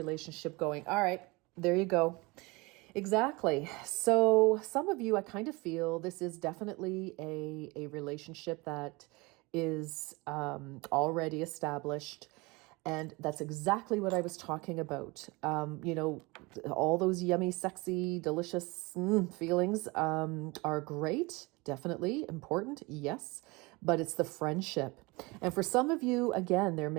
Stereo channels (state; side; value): quieter; left; 25.1 dB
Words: going. All right, there you go. Exactly. So some of you, I kind of feel this is definitely a relationship that is already established. And that's exactly what I was talking about. All those yummy, sexy, delicious feelings are great. Definitely important, yes, but it's the friendship. And for some of you, again, there